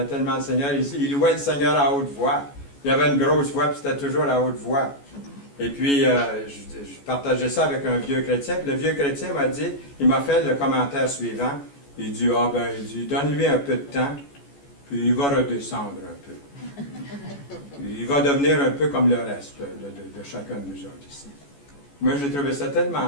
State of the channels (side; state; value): right; late; 14 ms